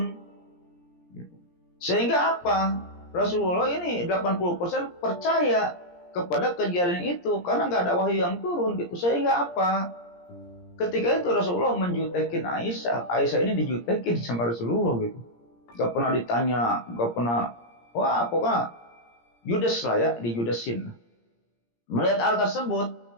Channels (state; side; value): late; right; 17 ms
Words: Sehingga apa? Rasulullah ini 80% percaya kepada kejadian itu karena nggak ada wahyu yang turun gitu. Sehingga apa? Ketika itu Rasulullah menjutekin Aisyah. Aisyah ini dijutekin sama Rasulullah gitu. Gak pernah ditanya, gak pernah. Wah, pokoknya judes lah ya, dijudesin. Melihat hal tersebut,